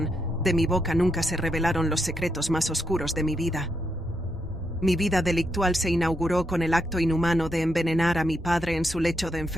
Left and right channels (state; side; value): normal; both; correlation 0.80